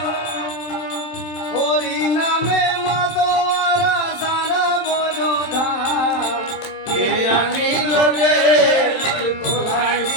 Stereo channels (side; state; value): right; late; 27 ms